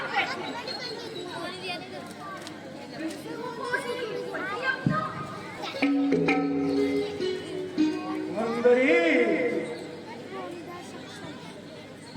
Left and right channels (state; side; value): identical; both; correlation 1.00